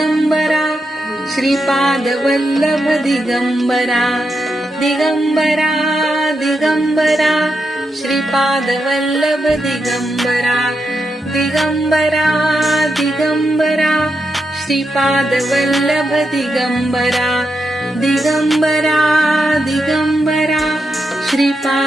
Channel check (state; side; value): normal; both; correlation 0.85